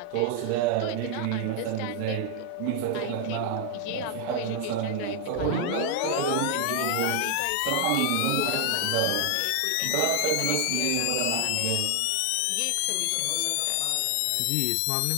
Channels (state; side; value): different; both; correlation 0.00